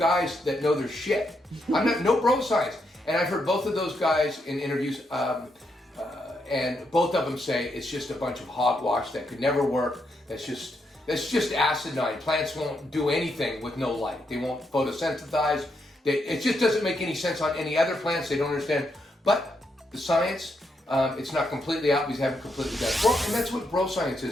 that know their shit. I'm not, no bro science. And I've heard both of those guys in interviews, and both of them say it's just a bunch of hogwash that could never work. That's just acidine. Plants won't do anything with no light. They won't photosynthesize. It just doesn't make any sense on any other plants. They don't understand. But the science, it's not completely out because they haven't completely done it. Well, and that's what bro science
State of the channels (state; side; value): normal; both; correlation 0.80